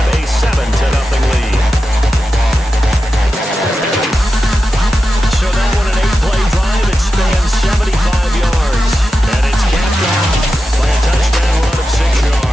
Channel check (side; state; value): both; normal; correlation 0.91